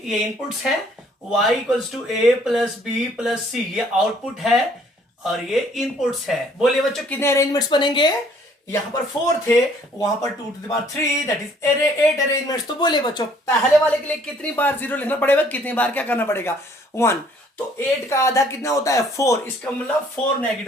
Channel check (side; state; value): both; normal; correlation 0.60